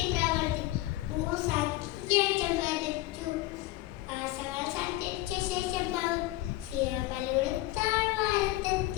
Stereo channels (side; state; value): right; quieter; 17.2 dB